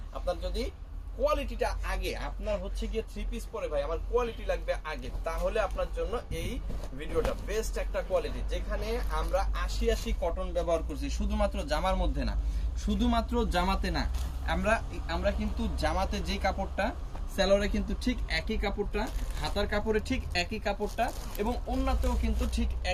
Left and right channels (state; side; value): identical; both; correlation 1.00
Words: আপনার যদি কোয়ালিটিটা আগে, আপনার হচ্ছে গিয়ে 3 পিস পরে ভাই আমার কোয়ালিটি লাগবে আগে, তাহলে আপনার জন্য এই ভিডিওটা বেস্ট একটা কোয়ালিটি। যেখানে আমরা 80 কটন ব্যবহার করছি, শুধুমাত্র জামার মধ্যে না, শুধুমাত্র জামাতে না, আমরা কিন্তু জামাতে যে কাপড়টা, সেলোরে কিন্তু ঠিক একই কাপড়টা, হাতার কাপড়ে ঠিক একই কাপড়টা, এবং ওন্নাতেও কিন্তু ঠিক